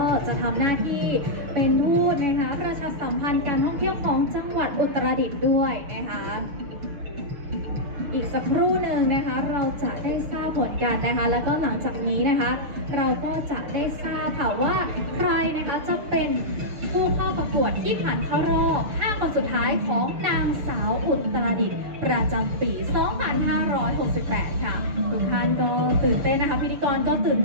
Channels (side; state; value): left; late; 6.6 ms